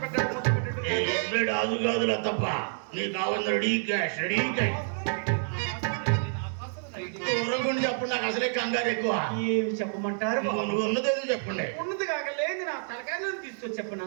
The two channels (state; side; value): silent; left; digital silence